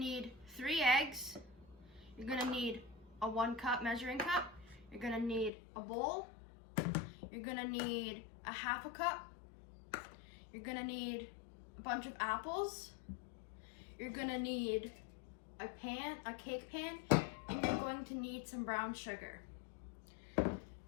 3 eggs. You're gonna need a 1 cup measuring cup. You're gonna need a bowl. You're gonna need a 1/2 cup. You're gonna need a bunch of apples. You're gonna need a cake pan, and you're going to need some brown sugar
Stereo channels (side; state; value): right; drops out; at 5.5 s